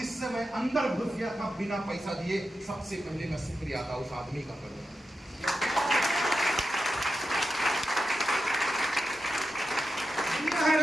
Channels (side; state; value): both; normal; correlation 0.90